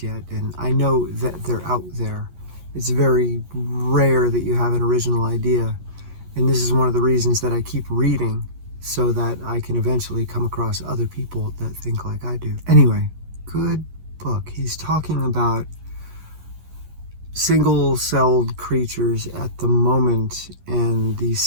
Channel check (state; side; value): late; left; 11 ms